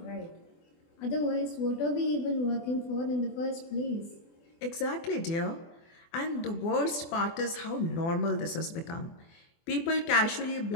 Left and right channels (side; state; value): right; late; 24 ms